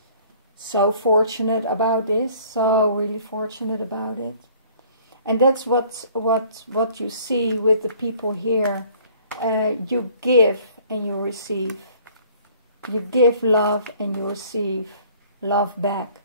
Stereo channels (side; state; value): both; inverted; correlation -0.55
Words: So fortunate about this, so really fortunate about it. And that's what you see with the people here. You give and you receive. You give love and you receive love back.